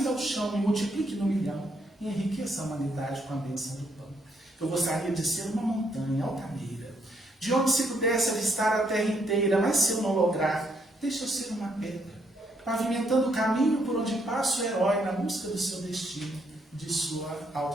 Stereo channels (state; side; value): normal; both; correlation 0.73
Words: ao chão, me multiplique no milhão e enriqueça a humanidade com a bênção do pão. Eu gostaria de ser uma montanha altaneira, de onde se pudesse avistar a terra inteira, mas se eu não lograr, deixa eu ser uma pedra, pavimentando o caminho por onde passa o herói na busca do seu destino, de sua